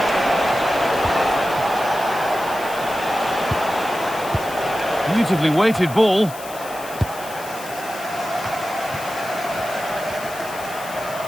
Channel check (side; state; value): left; noise; hiss, 15 dB below the sound